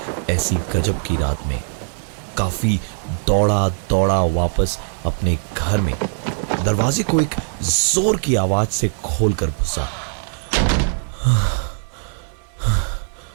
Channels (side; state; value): left; silent; digital silence